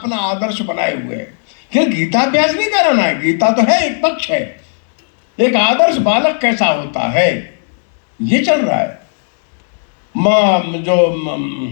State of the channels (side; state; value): right; silent; digital silence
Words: आदर्श बनाए हुए हैं। ये गीता अभ्यास नहीं कराना है, गीता तो है, एक पक्ष है, एक आदर्श बालक कैसा होता है ये चल रहा है। जो